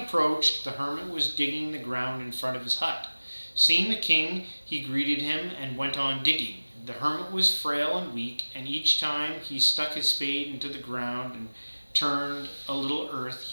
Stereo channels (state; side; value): inverted; both; correlation -1.00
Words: the hermit was digging the ground in front of his hut. Seeing the king, he greeted him and went on digging. The hermit was frail and weak, and each time he stuck his spade into the ground and turned a little earth,